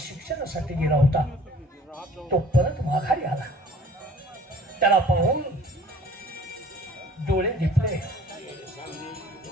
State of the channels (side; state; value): both; normal; correlation 0.51